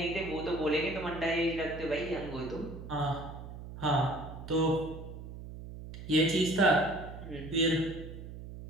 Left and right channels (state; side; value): noise; right; hum, 11 dB below the sound